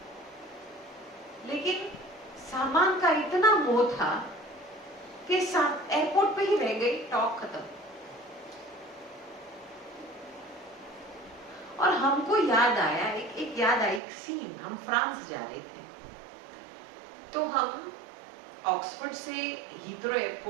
लेकिन सामान का इतना मोह था के साथ एयरपोर्ट पे ही रह गई, टॉक खत्म। और हमको याद आया, एक याद आई एक सीन। हम फ्रांस जा रहे थे, तो हम ऑक्सफोर्ड से हीथ्रो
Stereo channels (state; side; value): drops out; left; at 14.0 s